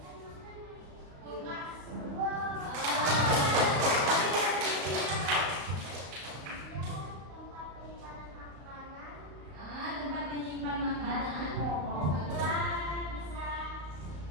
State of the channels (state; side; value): late; left; 34 ms